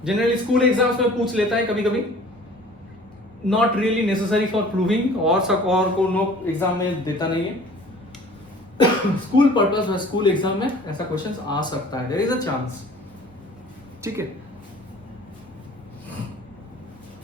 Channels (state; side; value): normal; both; correlation 0.48